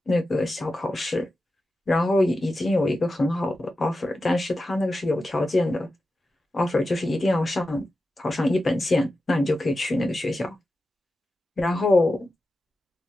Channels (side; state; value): both; normal; correlation 0.92